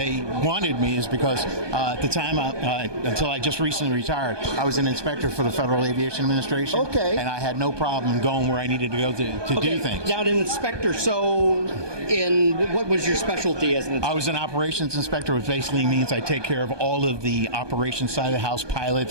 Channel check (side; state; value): left; late; 1.2 ms